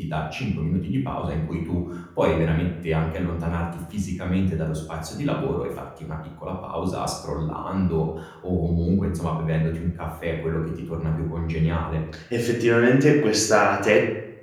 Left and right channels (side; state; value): both; identical; correlation 1.00